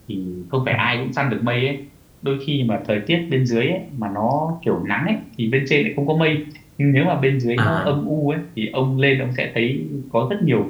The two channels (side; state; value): both; identical; correlation 1.00